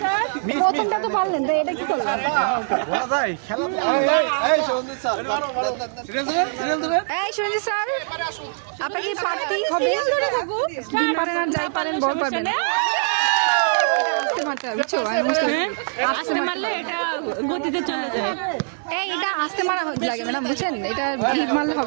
প্রথমটা তো পারলেন, তো এটা কি করলেন? এই সঞ্জিত স্যার, আপনাকে পারতেই হবে। ডিম পারেন আর যাই পারেন, বল পারবেন। এটা আস্তে মারতে হবে, বুঝছো? আমি বুঝতে পারছি, আস্তে মারলে এটা গতিতে চলে যায়। এই এটা আস্তে মারা লাগে ম্যাডাম, বুঝছেন? এটা হিট মারলে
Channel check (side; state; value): left; silent; digital silence